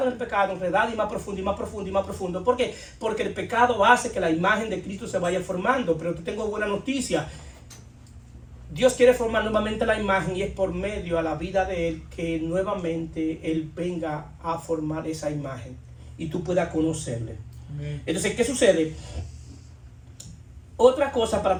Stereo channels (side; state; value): both; identical; correlation 1.00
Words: en el pecado, enredados y más profundo y más profundo y más profundo. ¿Por qué? Porque el pecado hace que la imagen de Cristo se vaya formando. Pero te tengo buena noticia. Dios quiere formar nuevamente la imagen y es por medio a la vida de Él que nuevamente Él venga a formar esa imagen y tú puedas conocerle. Amén. Entonces, ¿qué sucede? Otra cosa para